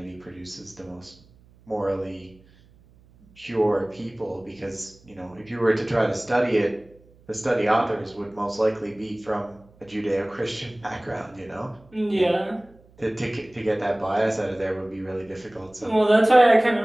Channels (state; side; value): noise; right; hum, 28 dB below the sound